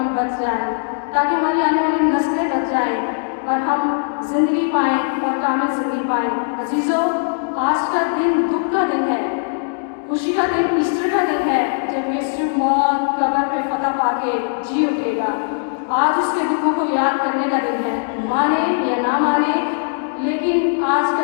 बच जाएं, ताकि हमारी आने वाली नस्लें बच जाएं और हम ज़िंदगी पाएँ और कामिल ज़िंदगी पाएँ। अजीज़ों, आज का दिन दुख का दिन है, खुशी का दिन ईस्टर का दिन है, जब यीशु मौत कब्र पे फतह पाके जी उठेगा। आज उसके दुखों को याद करने का दिन है, माने या ना माने, लेकिन आज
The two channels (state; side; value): silent; right; digital silence